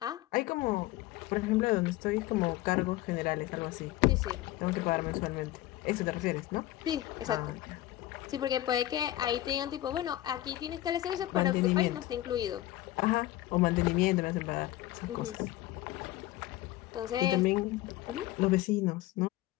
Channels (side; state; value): right; quieter; 15.7 dB